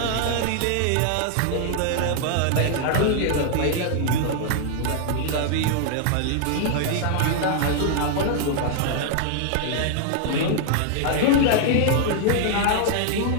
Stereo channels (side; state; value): both; different; correlation 0.00